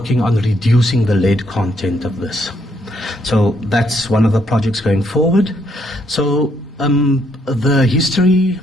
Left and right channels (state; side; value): normal; both; correlation 0.72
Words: on reducing the lead content of this. So that's one of the projects going forward. So the history